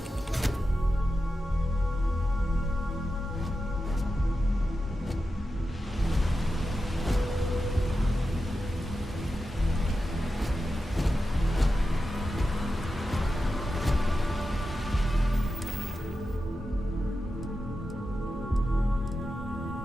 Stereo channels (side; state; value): both; normal; correlation 0.91